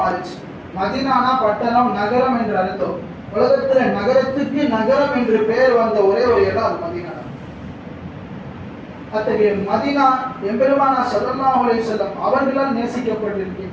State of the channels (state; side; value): identical; both; correlation 1.00